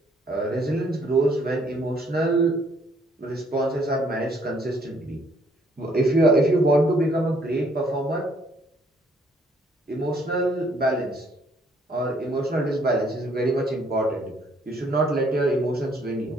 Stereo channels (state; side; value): normal; both; correlation 0.65